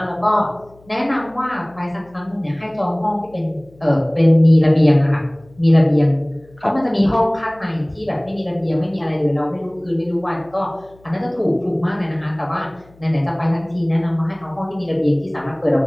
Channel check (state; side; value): noise; left; hum, 28 dB below the sound